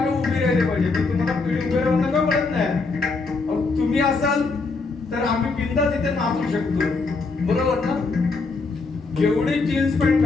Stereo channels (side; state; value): right; quieter; 4.0 dB